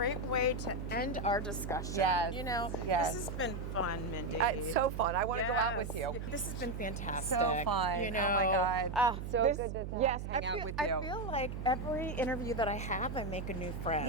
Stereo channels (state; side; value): noise; right; hum, 6 dB below the sound